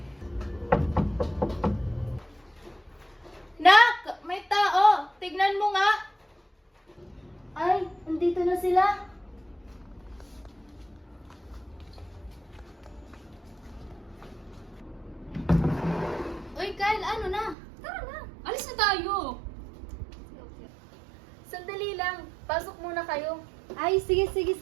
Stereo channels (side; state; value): left; drops out; at 17.6 s